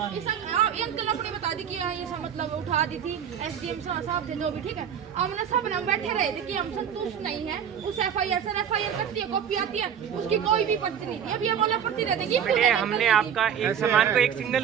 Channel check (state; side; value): quieter; left; 8.5 dB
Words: ये अंकल अपनी बता दी कि ये सब मतलब उठा दी थी एसडीएम साहब थे जो भी ठीक है हमने सब ना बैठे रहे थे कि हम संतुष्ट नहीं है उस एफआईआर से एफआईआर करती है कॉपी आती है उसकी कोई भी पर्ची नहीं थी अब ये बोले पर्ची दे देंगी हमने आपका एक सामान को एक